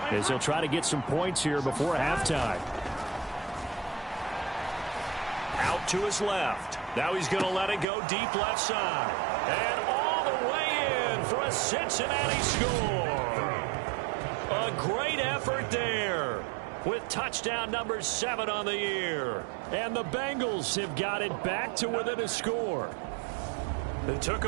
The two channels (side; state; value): left; drops out; at 7.9 s